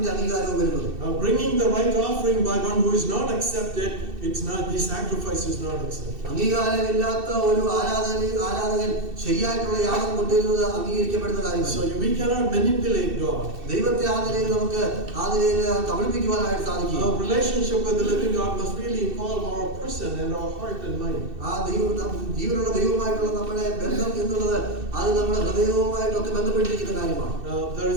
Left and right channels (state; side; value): late; left; 2.6 ms